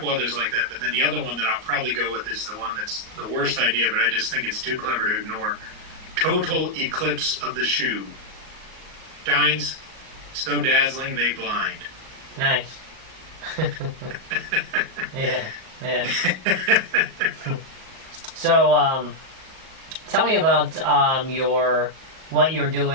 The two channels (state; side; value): late; left; 38 ms